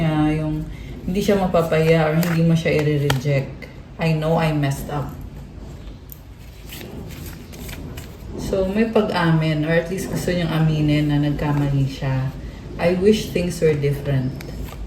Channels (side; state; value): both; identical; correlation 1.00